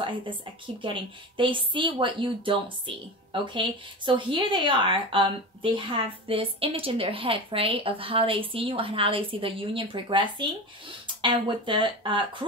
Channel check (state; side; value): normal; both; correlation 0.27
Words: I keep getting. They see what you don't see, okay? So here they are. They have this image in their head, right, of how they see you and how they see the union progressing. And with the